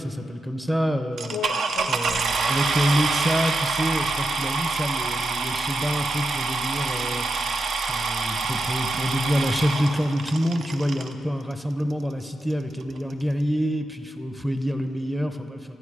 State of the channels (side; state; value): both; normal; correlation 0.87